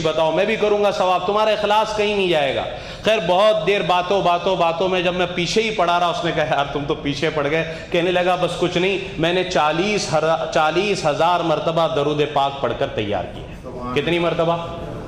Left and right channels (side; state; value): both; identical; correlation 1.00